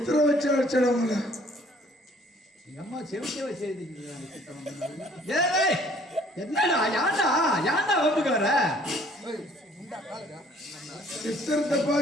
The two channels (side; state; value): both; normal; correlation 0.58